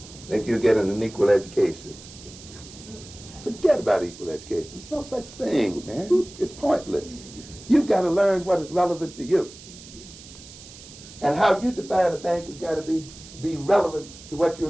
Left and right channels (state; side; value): noise; right; hiss, 18 dB below the sound